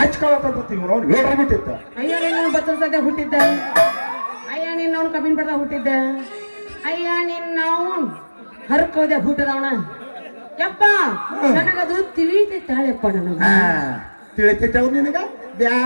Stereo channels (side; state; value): both; inverted; correlation -1.00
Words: ಇವ್ ಅವ್ನು ಹೇಳ್ಬಿಟ್ಟಿತ್ತ ಅಯ್ಯ ನಿನ್ನ ಬಚ್ಚಲ ಸದ್ಯ ಹುಟ್ಟಿದ್ದ ಅಯ್ಯ ನಿನ್ನವನು ಕಬ್ಬಿನ ಪಡ್ದ ಹುಟ್ಟಿದ್ದ ಅಯ್ಯ ನಿನ್ನವನ್ ಹರ್ಕೋದೆ ಹುಟ್ಟದವನ ಯಪ್ಪ ನನಗದು ತಿಳಿತೈತಾಳೆಪ್ಪ ನನಗ ತಿಳಿತೈತೆ ನಿನಗ